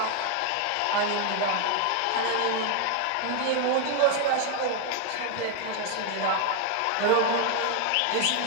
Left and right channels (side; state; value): both; different; correlation 0.01